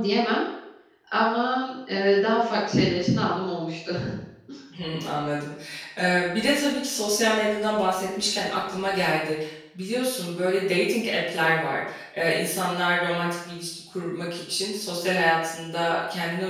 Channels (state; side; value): identical; both; correlation 1.00